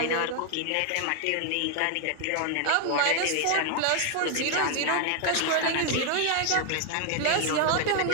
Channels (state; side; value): different; both; correlation 0.00